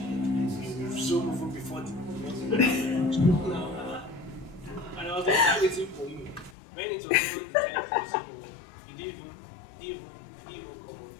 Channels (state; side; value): drops out; right; at 6.6 s